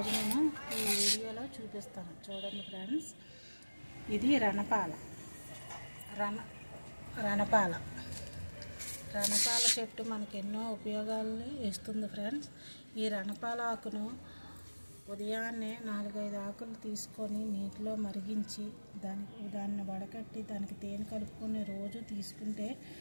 నేను ఈ వీడియోలో చూపిస్తాను. చూడండి ఫ్రెండ్స్, ఇది రణపాల చెట్టు మనకు ఎన్నో ఉపయోగాలను ఇస్తుంది ఫ్రెండ్స్. ఈ రణపాల ఆకును ఉదయాన్నే 4-5 ఆకులు తీసుకొని నీటిలో మరిగించి దాన్ని వడకట్టి దానికి తేనె కలుపుకొని రోజు తీసుకుంటే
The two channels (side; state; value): both; inverted; correlation -1.00